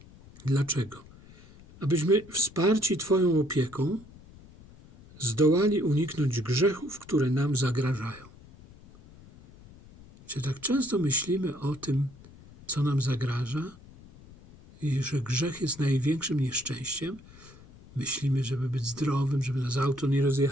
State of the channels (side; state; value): left; noise; rumble, 22 dB below the sound